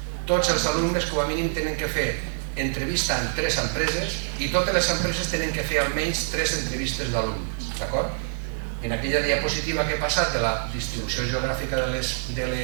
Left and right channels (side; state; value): left; silent; digital silence